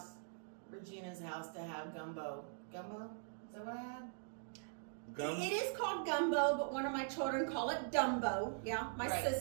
Regina's house, to have gumbo. Gumbo? Is that what I had? It is called gumbo, but one of my children call it Dumbo. Yeah, my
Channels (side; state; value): left; silent; digital silence